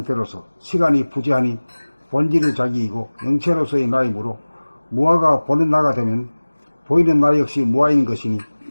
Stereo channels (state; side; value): inverted; both; correlation -1.00